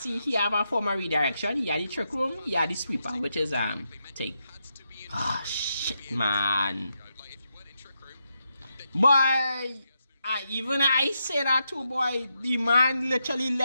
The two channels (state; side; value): inverted; both; correlation -0.84